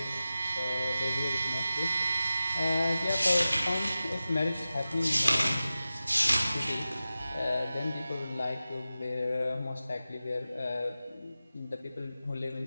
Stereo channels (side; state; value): both; inverted; correlation -0.94